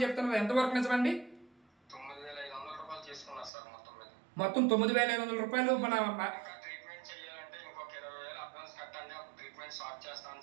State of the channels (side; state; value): left; drops out; at 3.5 s